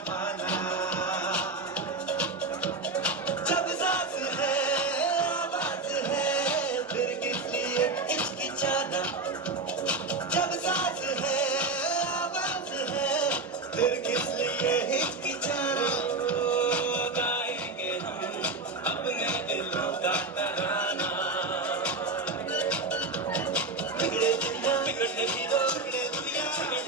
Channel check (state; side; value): quieter; left; 3.4 dB